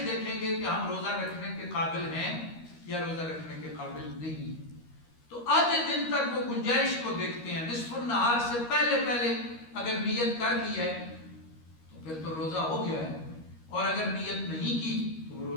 دیکھیں گے کہ ہم روزہ رکھنے کے قابل ہیں یا روزہ رکھنے کے قابل نہیں. تو آدھے دن تک وہ گنجائش کو دیکھتے ہیں. نصف النہار سے پہلے اگر نیت کر لی ہے تو پھر تو روزہ ہو گیا ہے، اور اگر نیت نہیں کی تو وہ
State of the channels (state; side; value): late; right; 13 ms